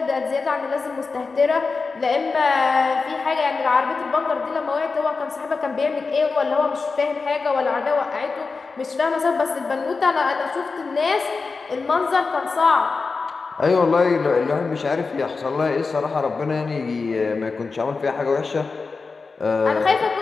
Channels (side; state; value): right; quieter; 4.4 dB